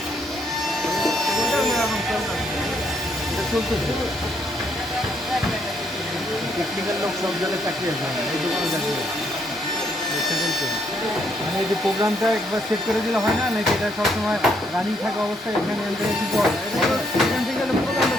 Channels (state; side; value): normal; both; correlation 0.72